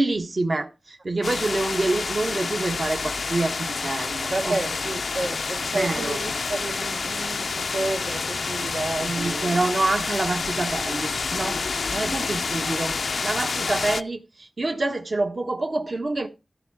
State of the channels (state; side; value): normal; both; correlation 0.93